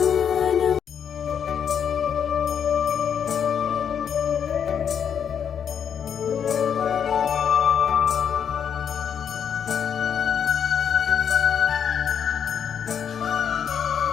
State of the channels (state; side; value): quieter; right; 7.9 dB